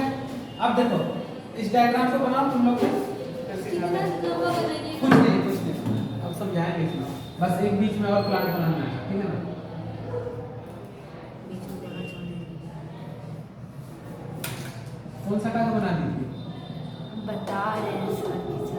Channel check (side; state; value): both; identical; correlation 1.00